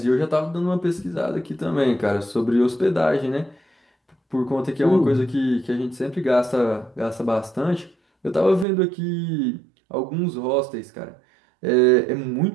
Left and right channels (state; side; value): drops out; left; at 8.7 s